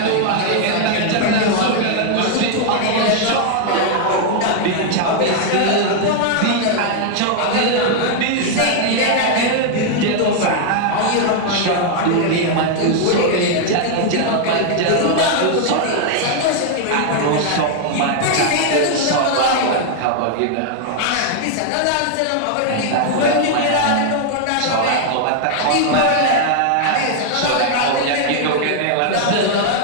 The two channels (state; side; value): different; both; correlation 0.00